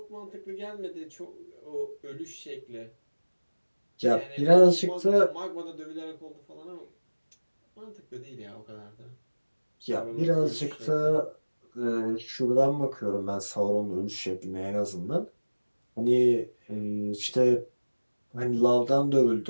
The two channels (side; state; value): both; inverted; correlation -1.00